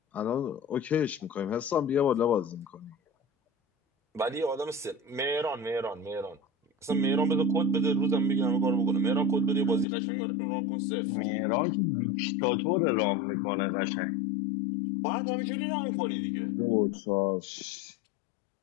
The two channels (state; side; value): drops out; right; at 9.9 s